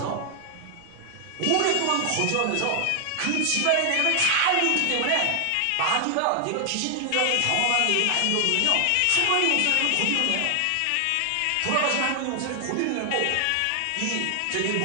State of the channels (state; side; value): different; both; correlation 0.00